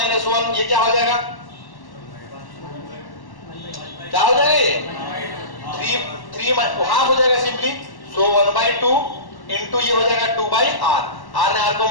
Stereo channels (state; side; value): late; right; 1.1 ms